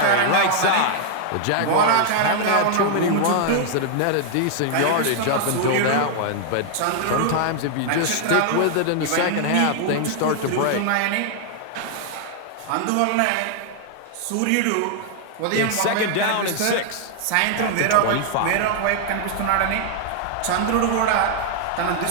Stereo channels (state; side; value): different; both; correlation 0.00